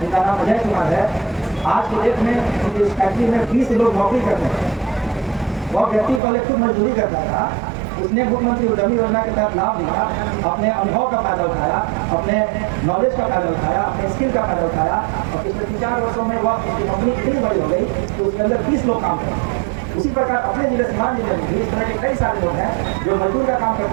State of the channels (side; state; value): left; drops out; at 6.2 s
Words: जिनका नाम अजय कुमार है। आज की डेट में उनकी इस फैक्ट्री में 20 लोग नौकरी करते हैं। वह व्यक्ति पहले खुद मजदूरी करता था, उसने मुख्यमंत्री उद्यमी योजना के तहत लाभ लिया, अपने अनुभव का फायदा उठाया, अपने नॉलेज का फायदा उठाया, अपने स्किल का फायदा उठाया, और पिछले 3-4 वर्षों में वह उसकी कंपनी इतनी बड़ी हो गई कि उसके अंदर 20 लोग काम करते। उसी प्रकार अपने जिले सीवान जिले में भी इस तरह के कई सारे लोग हैं जो मजदूर का काम